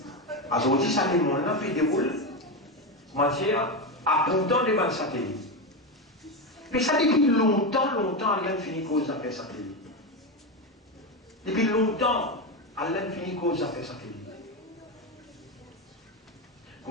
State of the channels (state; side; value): normal; both; correlation 0.13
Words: Aujourd'hui, satellite, on a fait des rôles, matière, à pourtant des bandes satellites. Mais ça, depuis longtemps, Allah finit cause d'affaires satellite. Depuis longtemps, Allah finit cause d'affaires satellite.